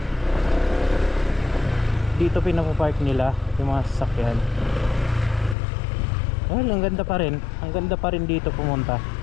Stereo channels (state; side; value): drops out; right; at 5.6 s